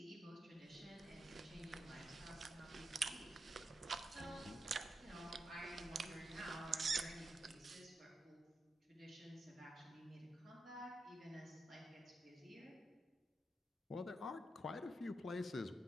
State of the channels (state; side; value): normal; both; correlation 0.86